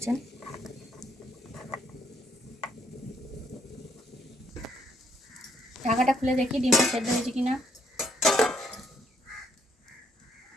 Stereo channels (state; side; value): normal; both; correlation 0.71